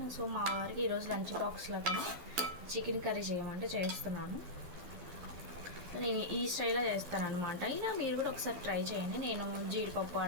సో మా వారికి ఈరోజు లంచ్ బాక్స్లో కానీ చికెన్ కర్రీ చేయమంటే చేస్తున్నాను. నేను ఈ స్టైల్లో చేస్తాను అనమాట. ఇలా మీరు కూడా ఒకసారి ట్రై చేయండి. నేను జీడిపప్పు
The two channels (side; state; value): left; late; 11 ms